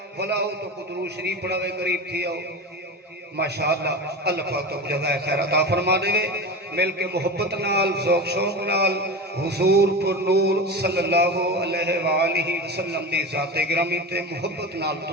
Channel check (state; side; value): normal; both; correlation 0.26